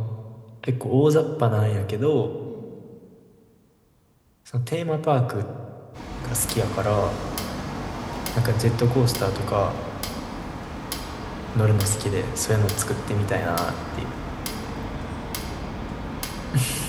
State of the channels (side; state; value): both; identical; correlation 1.00